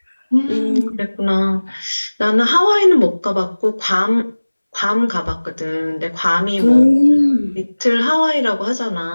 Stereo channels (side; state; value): both; inverted; correlation -1.00